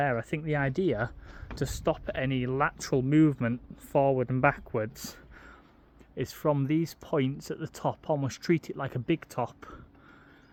I think the idea to stop any lateral movement forward and backwards is from these points at the top, almost treat it like a big top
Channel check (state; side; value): identical; both; correlation 1.00